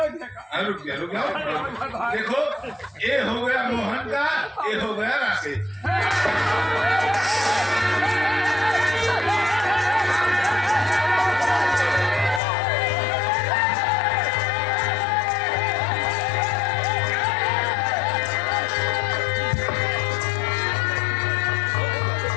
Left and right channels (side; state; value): right; drops out; at 12.4 s